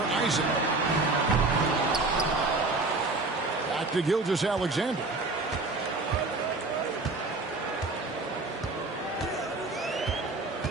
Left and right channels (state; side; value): quieter; left; 3.3 dB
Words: Isaac. Back to Gilgeous-Alexander.